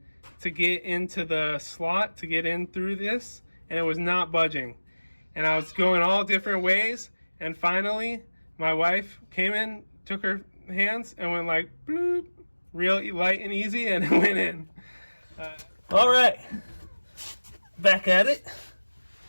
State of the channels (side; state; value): both; inverted; correlation -1.00